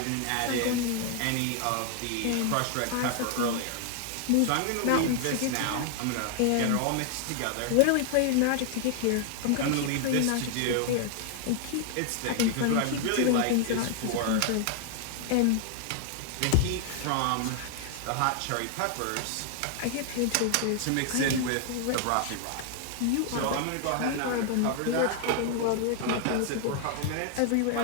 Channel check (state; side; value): different; both; correlation 0.00